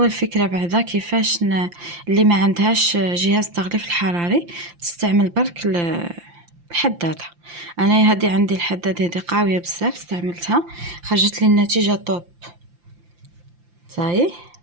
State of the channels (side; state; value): left; late; 5.8 ms